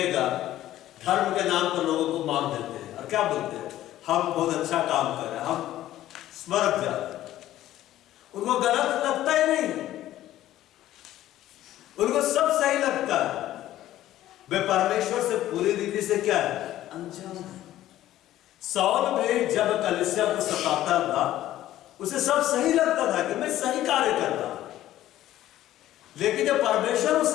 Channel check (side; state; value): right; quieter; 13.7 dB